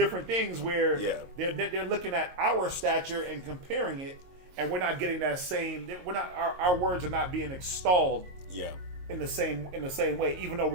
things where they're looking at our stature and comparing it and we're not getting that same. We're not. Our words are not being extolled. Yeah. In the same way, even though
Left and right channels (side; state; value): left; late; 22 ms